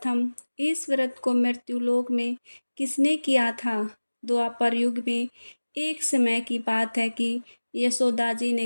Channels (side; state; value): both; inverted; correlation -1.00